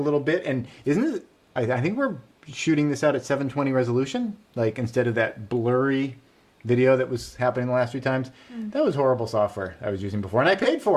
bit. And isn't it, I think we're shooting this out at 720 resolution, like instead of that blurry video that was happening the last few times. That was horrible software I was using before, and I paid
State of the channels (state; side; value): identical; both; correlation 1.00